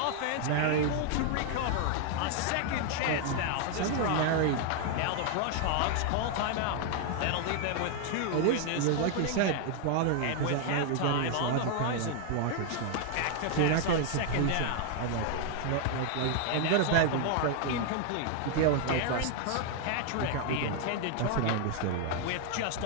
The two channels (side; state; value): both; different; correlation 0.00